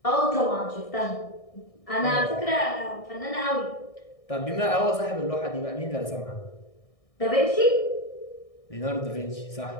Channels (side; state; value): right; late; 1.6 ms